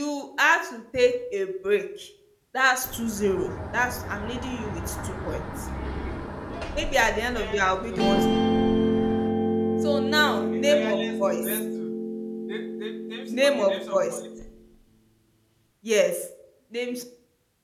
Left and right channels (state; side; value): identical; both; correlation 1.00